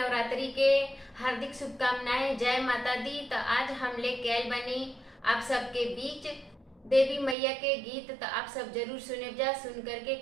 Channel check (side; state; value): left; drops out; at 7.4 s